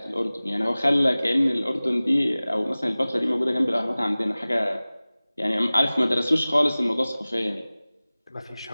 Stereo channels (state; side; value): inverted; both; correlation -0.98